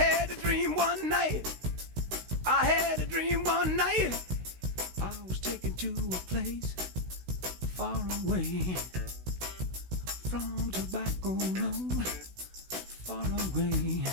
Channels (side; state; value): left; late; 16 ms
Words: a dream one night. I had a dream one night. I was taken to a place far away from Tobacco Road, far away